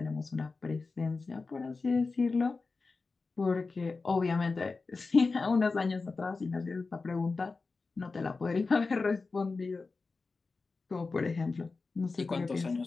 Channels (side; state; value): right; quieter; 4.0 dB